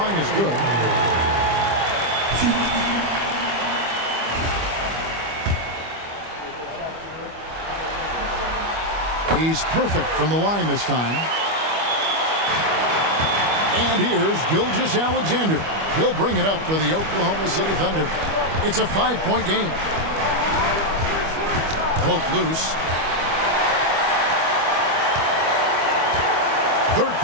is good. He's perfect from the line this time. And here's Gilgeous-Alexander. He'll bring it up for the Oklahoma City Thunder. It's a 5-point game. Poke loose. Third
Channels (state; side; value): late; left; 25 ms